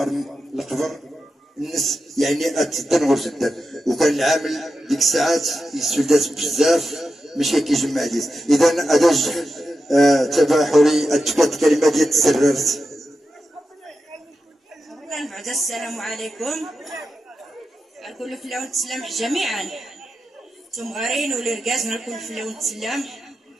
القبر الناس يعني اتدن جدا وكان العامل ديك الساعات يسودات بزاف ماشي كيجمع ديس. اذا اداج تباحري اتكات كلمه ديال تسررت. بعد السلام عليكم الكل فلا ونتسلم جميعا تمغارين ولركاز الكل فلا ونتسلم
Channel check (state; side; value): normal; both; correlation 0.90